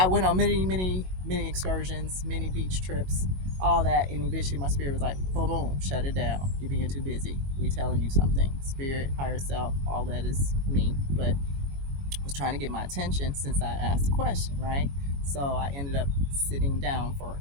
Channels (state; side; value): late; left; 22 ms